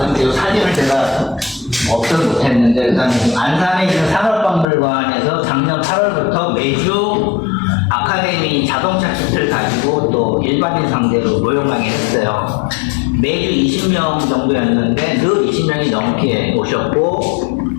이 사진을 제가 없어서 못했는데, 일단 안산에 있는 산업박물관에서 작년 8월부터 매주 아카데미 자동차 키트를 가지고 또 일반인 상대로 모형 강의를 했어요. 매주 20명 정도였는데 늘 20명이 넘게 오셨고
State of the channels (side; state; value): right; drops out; at 4.7 s